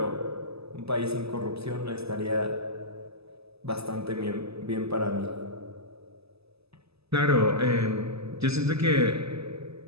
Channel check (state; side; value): late; left; 0.78 ms